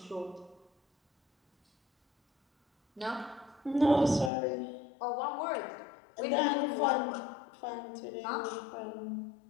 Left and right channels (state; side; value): drops out; right; at 4.3 s